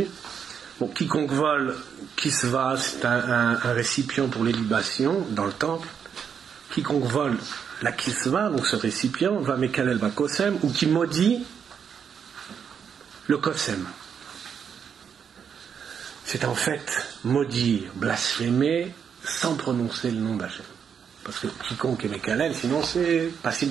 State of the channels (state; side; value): quieter; left; 7.3 dB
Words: Bon, quiconque vole kisva, c'est un récipient pour les libations dans le temple. Quiconque vole la kisva, donc ce récipient, va mekalel bakosem, ou qui maudit le kosem. C'est en fait maudire, blasphémer sans prononcer le nom d'Hachem. Parce que quiconque est Mekalel, sinon c'est